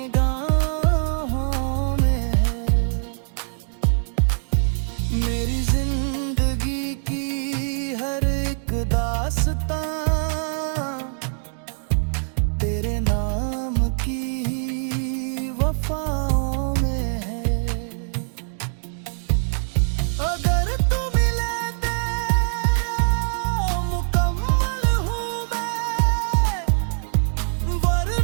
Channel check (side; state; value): left; silent; digital silence